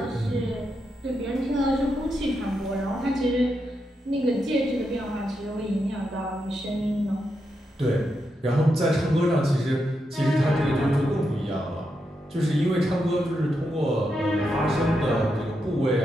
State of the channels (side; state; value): both; normal; correlation 0.84